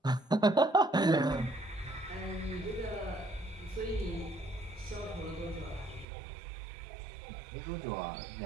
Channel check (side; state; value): left; drops out; at 6.1 s